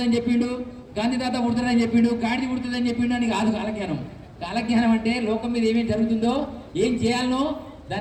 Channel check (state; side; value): identical; both; correlation 1.00